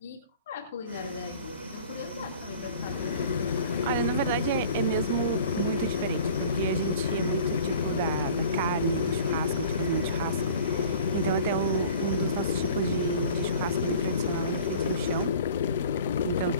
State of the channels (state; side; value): inverted; both; correlation -0.45